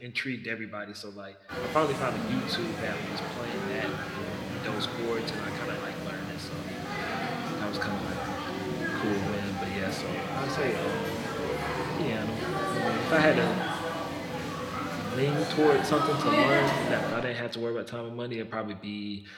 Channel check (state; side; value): identical; both; correlation 1.00